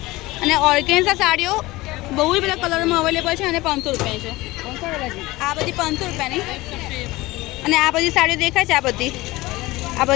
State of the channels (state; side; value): quieter; right; 19.9 dB